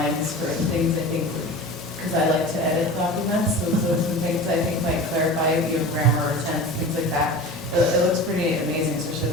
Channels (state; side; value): normal; both; correlation 0.34